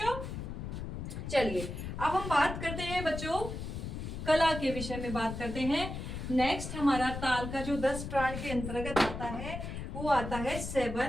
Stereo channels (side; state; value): left; noise; rumble, 6 dB below the sound